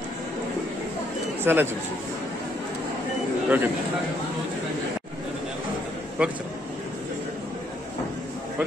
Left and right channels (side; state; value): both; normal; correlation 0.71